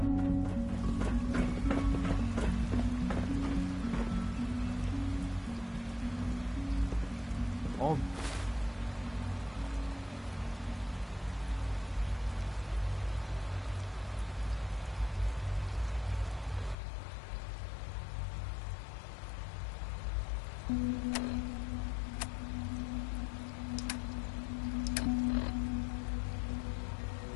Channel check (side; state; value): right; drops out; at 16.8 s